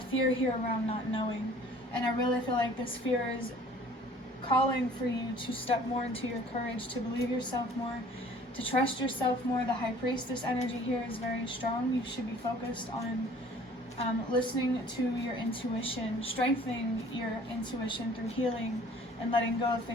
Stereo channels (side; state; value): both; normal; correlation 0.51